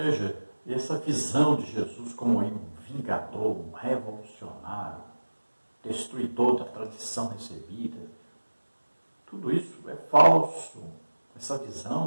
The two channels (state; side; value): inverted; both; correlation -1.00